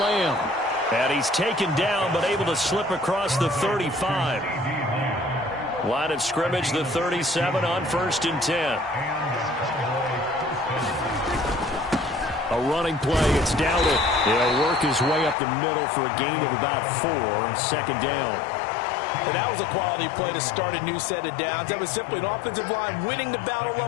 And he's taken down but able to slip across the 35. Line of scrimmage, the 37 on 1st and 10. A running play, it's Dowdle. He'll work his way up the middle for a gain of about 4, second down. And that was a quality play to start a new set of downs. That was simply an offensive line winning the battle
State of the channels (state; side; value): drops out; right; at 15.4 s